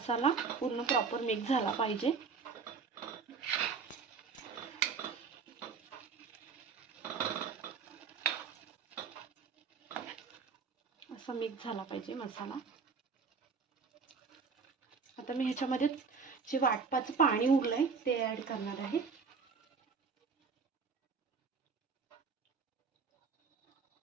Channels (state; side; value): quieter; left; 5.3 dB